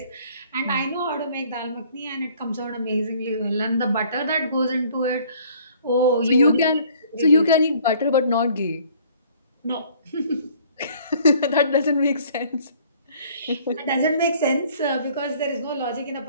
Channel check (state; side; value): inverted; both; correlation -0.56